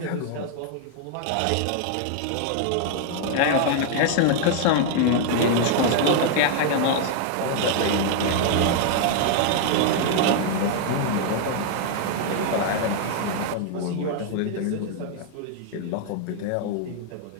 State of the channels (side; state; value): both; different; correlation 0.00